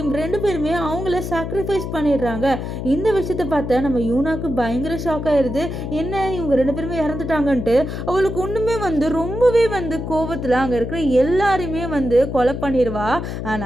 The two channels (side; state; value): left; noise; hum, 5 dB below the sound